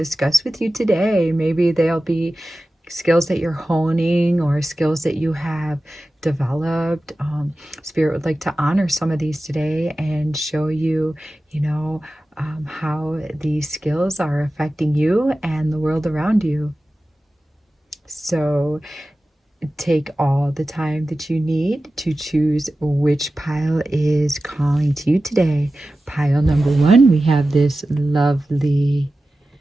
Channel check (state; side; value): normal; both; correlation 0.95